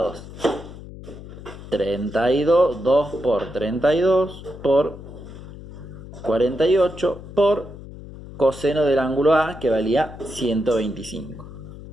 32, 2 por 32 por 48 por coseno del ángulo A, que valía 125.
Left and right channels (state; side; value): noise; left; hum, 14 dB below the sound